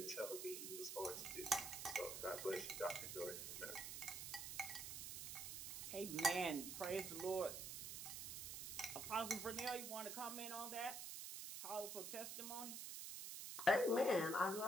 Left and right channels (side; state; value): right; noise; hiss, 5 dB below the sound